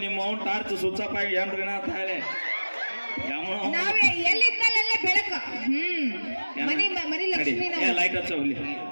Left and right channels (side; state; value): both; inverted; correlation -1.00